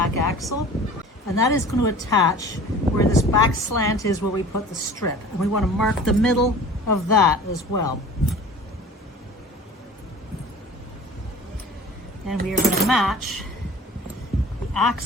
axle, and that is going to attach where this back slant is, where we put the strip. And we want to mark the middle of that as well. And we are going to match the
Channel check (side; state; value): both; normal; correlation 0.43